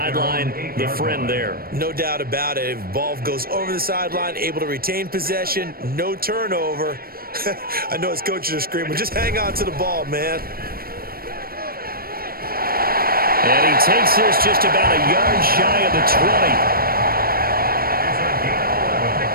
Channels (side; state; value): left; late; 0.43 ms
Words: the friend there. No doubt about it. If ball goes over the sideline, able to retain possession, no turnover. I know his coaches are screaming, just hang on to the ball, man. And he takes this just about a yard shy of the 20.